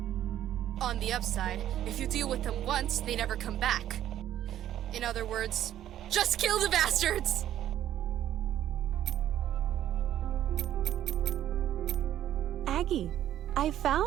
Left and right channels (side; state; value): left; quieter; 11.8 dB